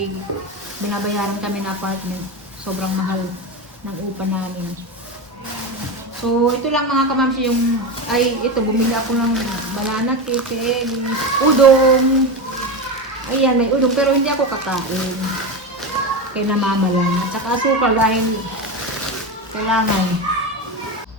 binabayaran kami na apartment. Sobrang mahal ng upa namin. So, ito lang mga kamamsi ito, bumili ako ng banana cake, udong. Ayan, may udong, pero hindi ako kakain. Kaya namama lang. At saka asukal dahil kailangan.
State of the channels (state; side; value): normal; both; correlation 0.19